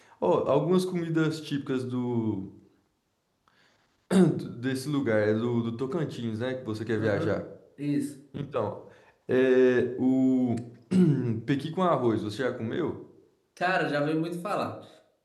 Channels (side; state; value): both; identical; correlation 1.00